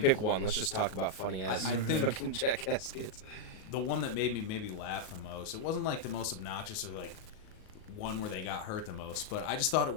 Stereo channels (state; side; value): late; right; 38 ms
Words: pick one. Let's just talk about funny ass I think- fucking Jackass skits. the one that made me maybe laugh the most. It wasn't like the most obnoxious or like one where they got hurt the most, but I just thought it